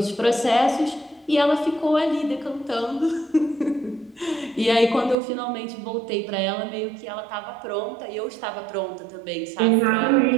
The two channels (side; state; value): left; drops out; at 5.2 s